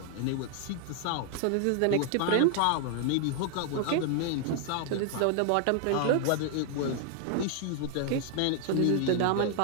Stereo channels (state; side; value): different; both; correlation 0.00